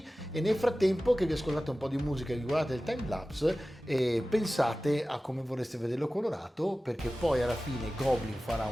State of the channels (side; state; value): both; normal; correlation 0.96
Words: E nel frattempo che vi ascoltate un po' di musica e vi guardate il timelapse, pensate a come vorreste vederlo colorato, perché poi alla fine Goblin farà